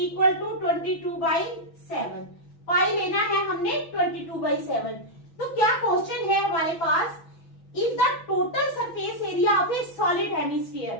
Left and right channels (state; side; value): late; right; 6.1 ms